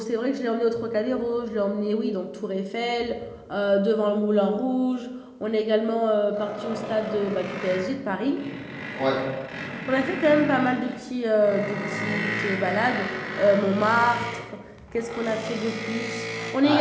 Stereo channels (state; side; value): identical; both; correlation 1.00